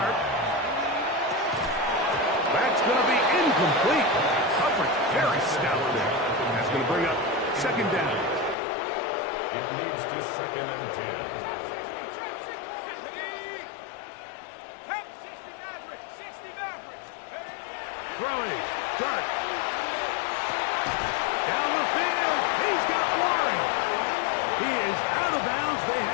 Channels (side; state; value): right; drops out; at 8.6 s